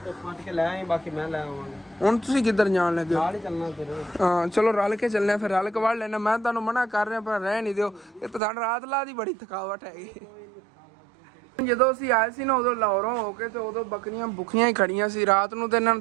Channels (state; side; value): drops out; left; at 8.4 s